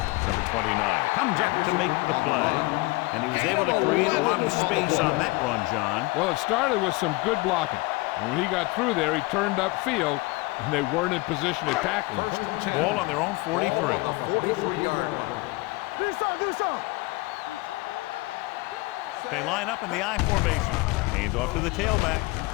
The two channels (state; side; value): quieter; right; 23.2 dB